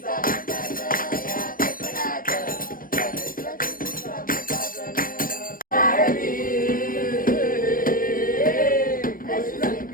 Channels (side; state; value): right; late; 0.41 ms